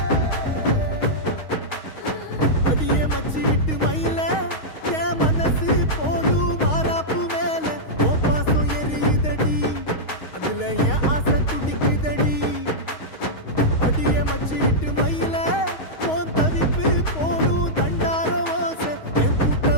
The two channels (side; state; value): right; late; 6.4 ms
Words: அடியே மச்சி விட்டு மயில என் மனசு போடும் மாறாப்பு மேல ஓ பாசம் எரியுதடி அதுல என் ஆசை துடிக்குதடி அடியே மச்சி விட்டு மயில போன் தவிப்பு போடும் தண்டார ஓசை என்